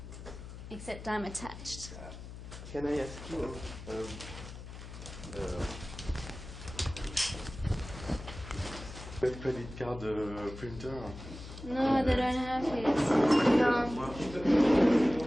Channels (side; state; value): left; noise; hum, 12 dB below the sound